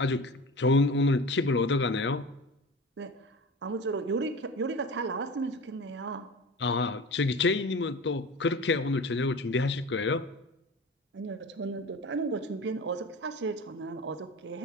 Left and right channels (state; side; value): normal; both; correlation 0.34